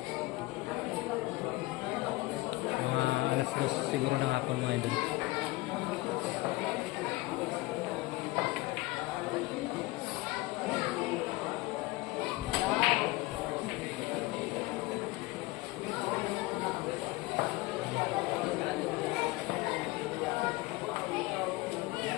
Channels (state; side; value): quieter; right; 20.8 dB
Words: Mga alas 2 siguro ng hapon mga idol.